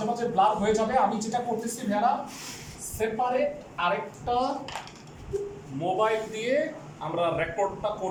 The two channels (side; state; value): both; identical; correlation 1.00